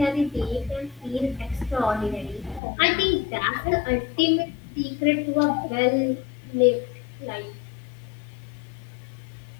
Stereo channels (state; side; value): drops out; right; at 2.6 s